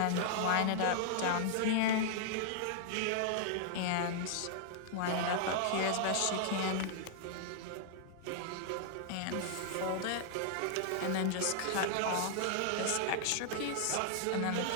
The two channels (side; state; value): both; different; correlation -0.01